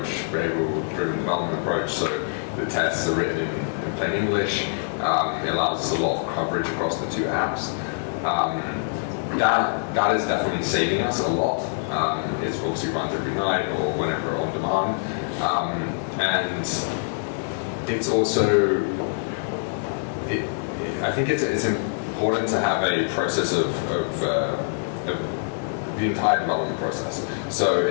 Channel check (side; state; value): right; silent; digital silence